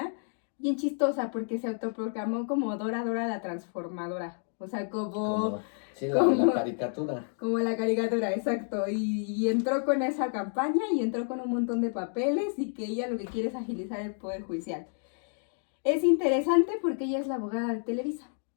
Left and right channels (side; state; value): right; silent; 56 dB below the other